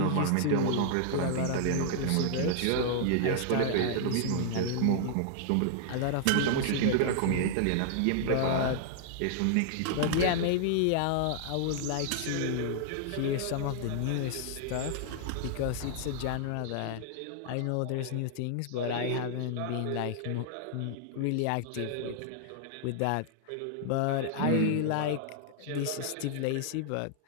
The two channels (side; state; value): both; different; correlation -0.01